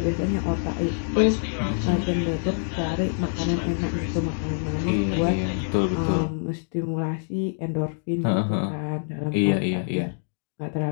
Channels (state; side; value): silent; right; digital silence